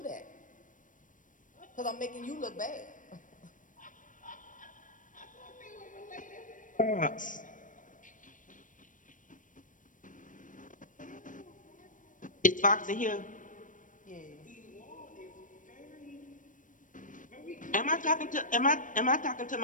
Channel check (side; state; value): right; late; 0.38 ms